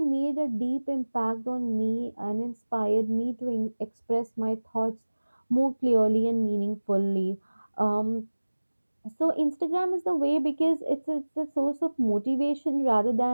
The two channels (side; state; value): both; inverted; correlation -1.00